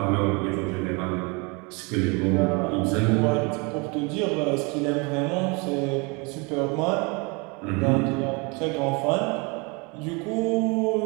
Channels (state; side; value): quieter; left; 29.9 dB